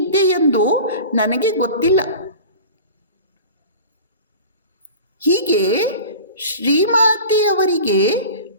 ಎಂದು ನನಗೆ ಗೊತ್ತಿಲ್ಲ. ಹೀಗೆ ಶ್ರೀಮಾತೆಯವರಿಗೆ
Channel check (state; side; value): inverted; both; correlation -0.37